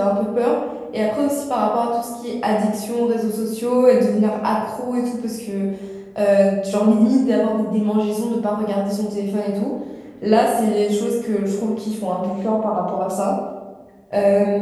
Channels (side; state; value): both; identical; correlation 1.00